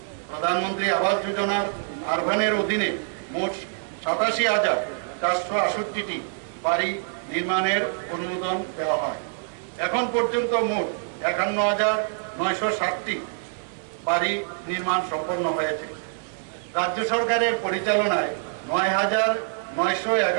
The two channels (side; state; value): left; silent; digital silence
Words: প্রধানমন্ত্রী আবাস যোজনার আরবানের অধীনে মোট 87,468টি বাড়ি নির্মাণের অনুমোদন দেওয়া হয়। এখন পর্যন্ত মোট 51,960টি বাড়ি নির্মাণ সম্পন্ন হয়েছে। রাজ্য সরকারের পরিচালনায়